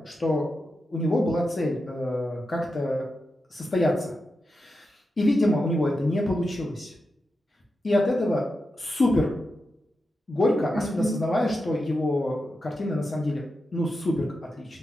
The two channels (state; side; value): normal; both; correlation 0.89